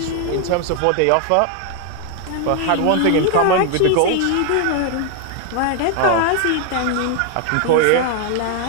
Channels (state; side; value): different; both; correlation 0.00